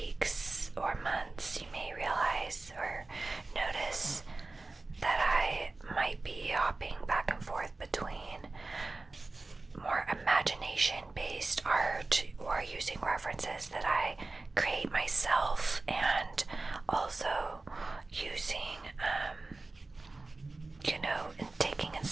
or months, you may realize or notice that I might be hopping back and forth between more imagination-based art or using references that I create myself, and also using, and taking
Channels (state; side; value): quieter; left; 3.3 dB